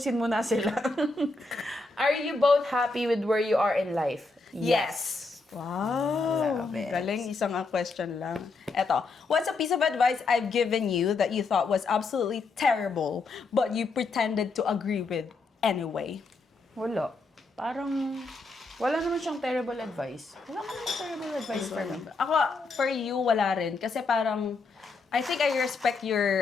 mo na sila. Are you both happy with where you are in life? Yes. Wow. Love it. Galing, isang question lang. Eto, what's a piece of advice I've given you that you thought was absolutely terrible, but you pretended to agree with anyway? Wala. Parang, wala naman siyang terrible advice. Wala naman terrible advice for me. Ako, for you, wala rin. Kasi parang, I think I respect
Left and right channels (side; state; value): right; quieter; 3.7 dB